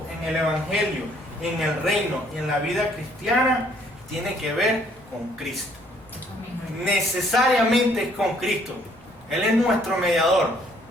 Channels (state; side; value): normal; both; correlation 0.63